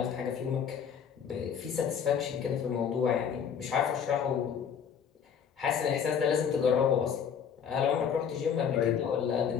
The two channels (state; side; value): quieter; right; 7.6 dB